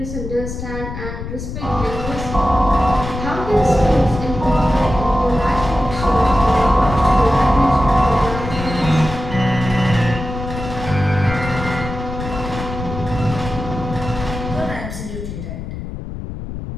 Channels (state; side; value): noise; left; rumble, 8 dB below the sound